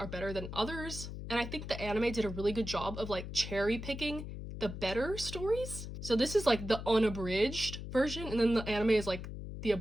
better than others, and I think the anime did a really good job of like cherry picking the better stories. So this is like the unabridged version, and then the anime is like the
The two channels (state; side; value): noise; left; hum, 8 dB below the sound